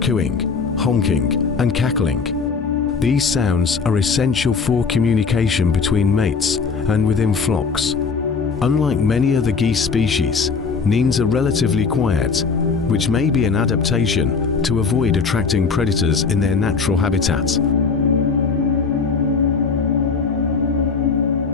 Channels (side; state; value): right; quieter; 5.1 dB